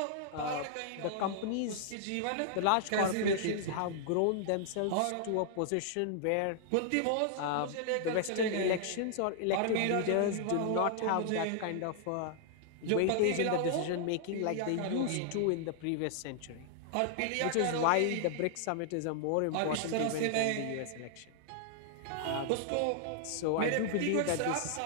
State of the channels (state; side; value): different; both; correlation -0.01